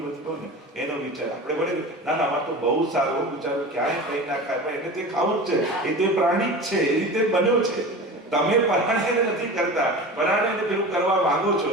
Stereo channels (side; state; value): both; normal; correlation 0.33